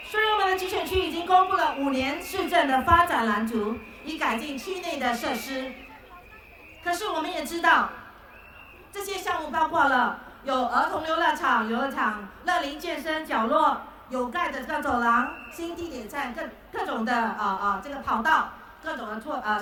所以我们的集选区已经公布了5年市政的发展蓝图，以改进区内的设施。可是我们也知道，这些项目包括了有儿童游乐场、乐龄健身角落、有盖的走廊、新地铁站、各种的这个跑道、各种的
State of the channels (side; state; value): both; identical; correlation 1.00